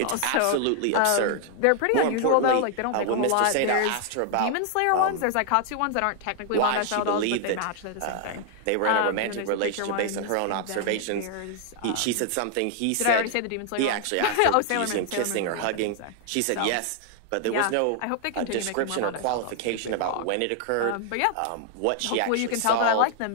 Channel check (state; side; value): different; both; correlation 0.00